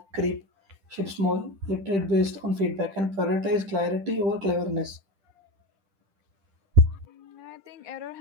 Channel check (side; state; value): left; late; 10 ms